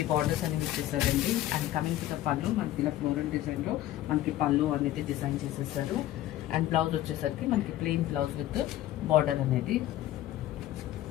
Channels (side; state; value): right; quieter; 13.9 dB